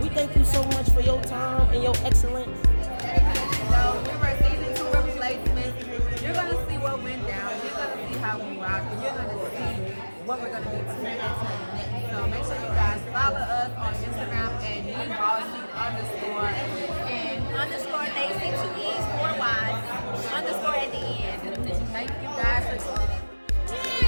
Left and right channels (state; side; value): inverted; both; correlation -1.00